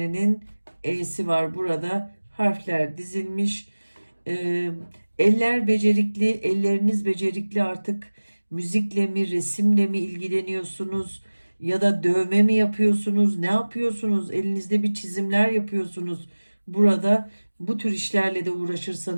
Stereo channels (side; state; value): both; inverted; correlation -1.00